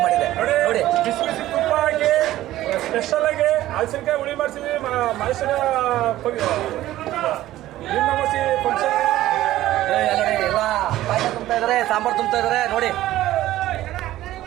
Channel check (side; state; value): left; quieter; 14.8 dB